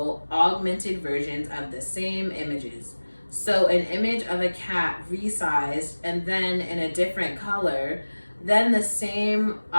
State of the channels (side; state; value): both; inverted; correlation -1.00